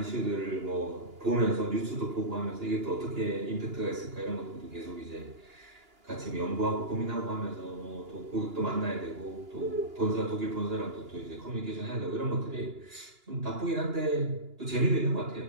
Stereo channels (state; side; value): late; left; 2.9 ms